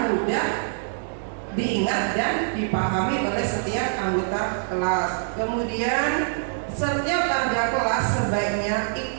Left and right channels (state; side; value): silent; left; 62 dB below the other